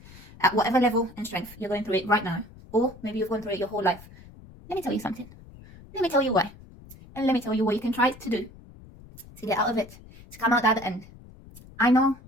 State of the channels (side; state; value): left; noise; rumble, 20 dB below the sound